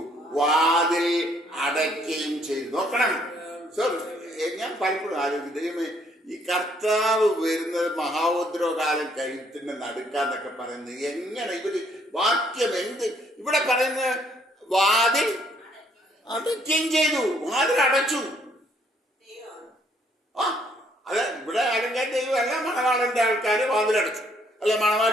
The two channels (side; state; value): both; normal; correlation 0.67